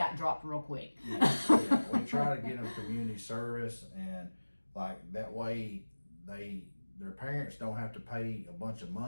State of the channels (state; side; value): inverted; both; correlation -1.00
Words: dropped real quick. Yeah. We try to get them community service, and like that way their parents don't have to pay a bunch of